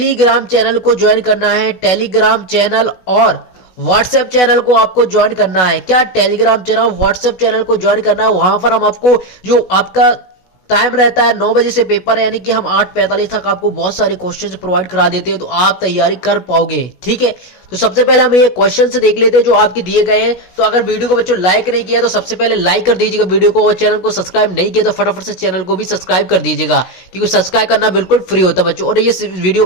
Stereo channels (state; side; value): late; right; 16 ms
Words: चैनल को ज्वाइन करना है। टेलीग्राम चैनल और व्हाट्सएप चैनल को आपको ज्वाइन करना है। क्या टेलीग्राम चैनल व्हाट्सएप चैनल को ज्वाइन करना है। वहां पर हम आपको जो आपका टाइम रहता है 9 बजे से पेपर है, यानी कि हम 8:45 तक आपको बहुत सारे क्वेश्चन प्रोवाइड करा देते हैं, तो आप तैयारी कर पाओगे। ठीक है, तो सबसे पहले हम ये क्वेश्चन से देख लेते हैं जो आपके दिए गए हैं। तो अगर वीडियो को बच्चों लाइक नहीं किया तो सबसे पहले लाइक कर दीजिएगा वीडियो को, और चैनल को सब्सक्राइब नहीं किया तो फटाफट से चैनल को भी सब्सक्राइब कर दीजिएगा, क्योंकि सब्सक्राइब करना बिल्कुल फ्री होता है बच्चों। और ये वीडियो